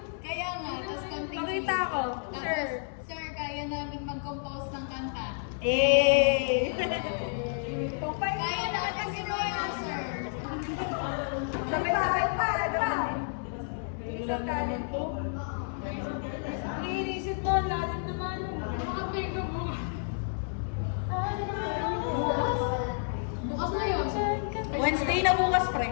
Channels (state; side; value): silent; right; digital silence